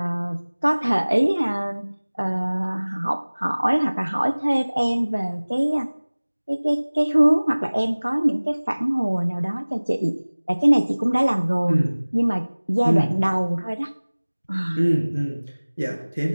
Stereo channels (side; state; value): both; inverted; correlation -1.00